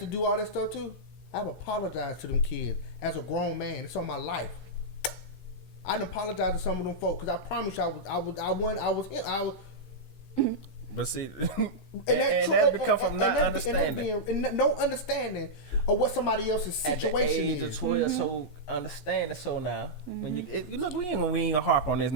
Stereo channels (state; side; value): late; right; 14 ms